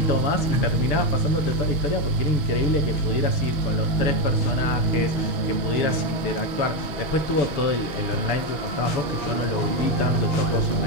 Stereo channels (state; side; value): late; right; 6.9 ms